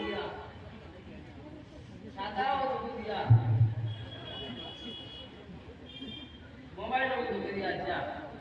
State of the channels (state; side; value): identical; both; correlation 1.00